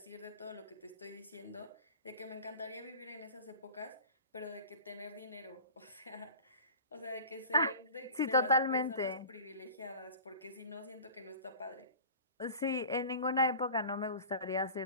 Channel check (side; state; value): both; inverted; correlation -0.39